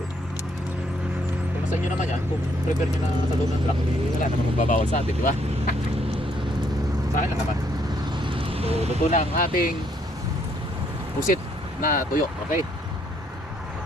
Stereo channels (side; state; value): both; normal; correlation 0.70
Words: Kung sa inyo naman yan, kung prepare nyo na sa loob ng truck, wala naman magbabawal sa atin, di ba? Sa akin lang naman. So luto na ang ating pusit na tuyo, okay?